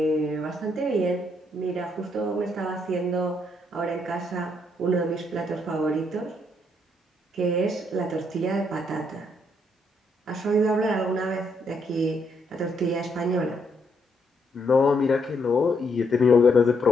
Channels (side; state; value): both; normal; correlation 0.74